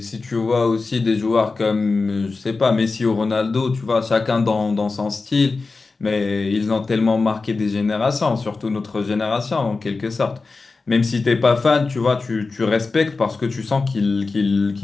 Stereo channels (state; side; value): quieter; right; 4.0 dB